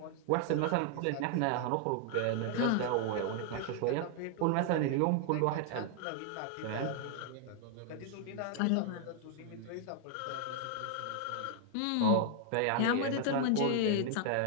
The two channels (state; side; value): different; both; correlation 0.00